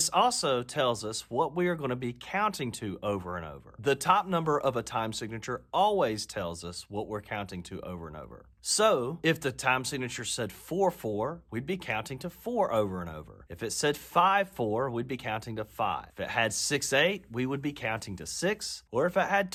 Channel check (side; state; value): both; identical; correlation 1.00